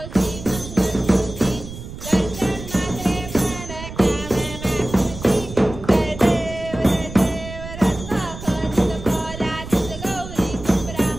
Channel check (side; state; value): right; noise; rumble, 12 dB below the sound